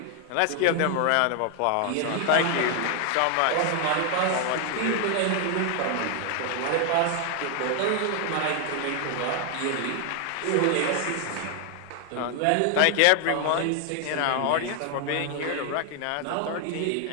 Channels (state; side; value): different; both; correlation 0.00